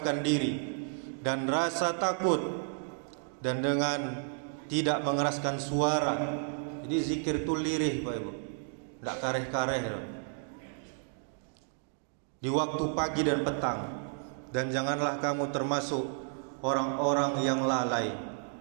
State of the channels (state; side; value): silent; left; 56 dB below the other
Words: diri dan rasa takut, dan dengan tidak mengeraskan suara. Jadi zikir itu lirih, Pak Ibu, tidak kareh-kareh di waktu pagi dan petang. Dan janganlah kamu termasuk orang-orang yang lalai.